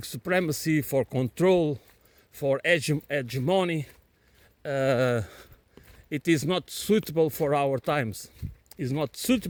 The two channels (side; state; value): both; identical; correlation 1.00